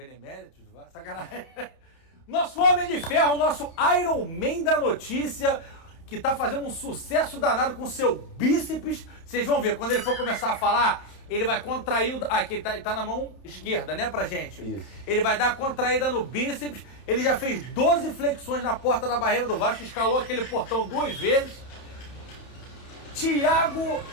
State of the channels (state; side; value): late; right; 30 ms